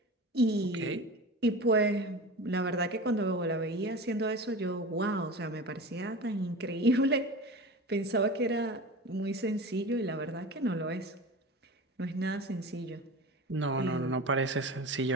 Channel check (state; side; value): normal; both; correlation 0.32